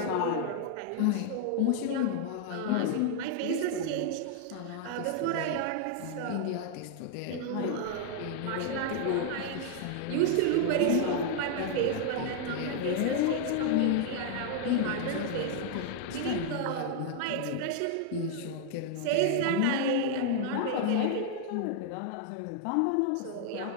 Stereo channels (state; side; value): different; both; correlation 0.00